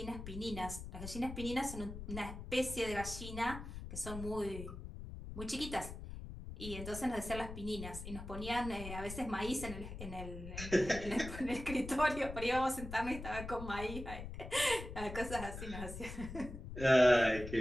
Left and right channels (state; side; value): noise; left; rumble, 9 dB below the sound